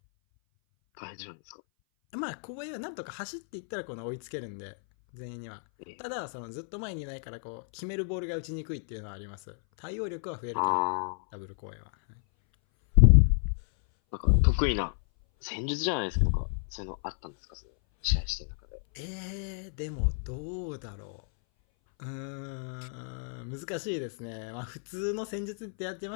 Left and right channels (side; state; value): right; silent; 57 dB below the other